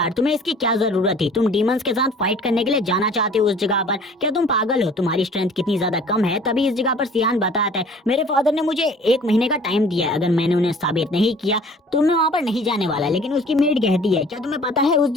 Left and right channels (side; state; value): both; normal; correlation 0.50